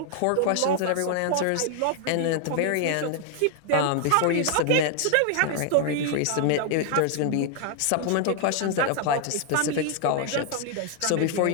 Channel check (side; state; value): both; different; correlation 0.00